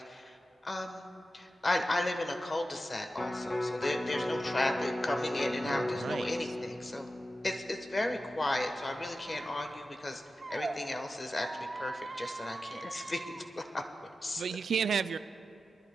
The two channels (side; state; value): both; normal; correlation 0.92